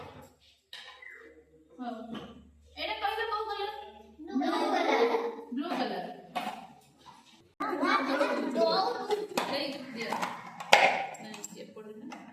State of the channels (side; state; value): both; identical; correlation 1.00